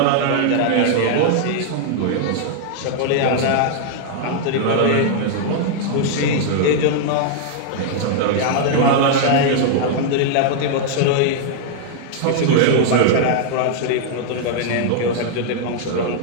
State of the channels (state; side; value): different; both; correlation -0.01